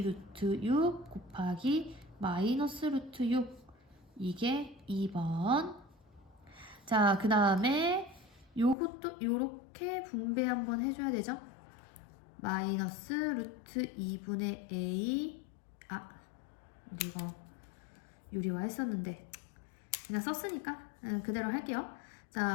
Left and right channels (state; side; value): drops out; right; at 8.8 s